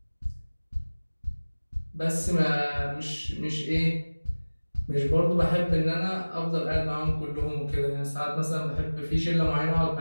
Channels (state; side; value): inverted; both; correlation -1.00